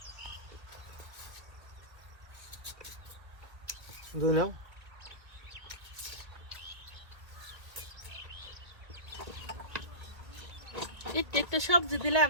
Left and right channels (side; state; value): left; late; 1.7 ms